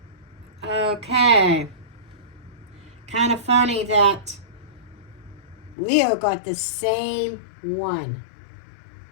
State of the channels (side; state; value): right; drops out; at 5.8 s